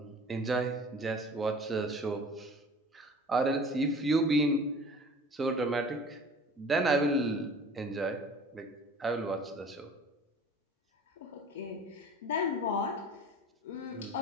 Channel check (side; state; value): both; normal; correlation 0.44